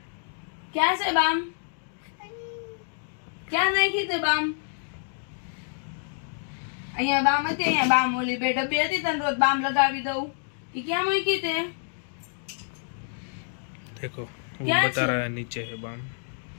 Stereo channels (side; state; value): right; silent; digital silence